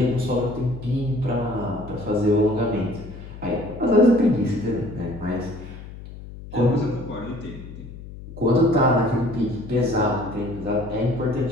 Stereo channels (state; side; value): noise; left; hum, 14 dB below the sound